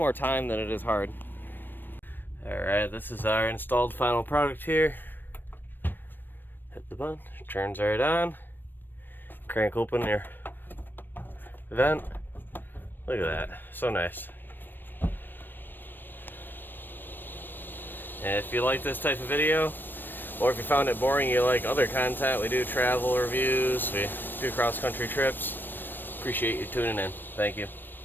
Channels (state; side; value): late; right; 0.094 ms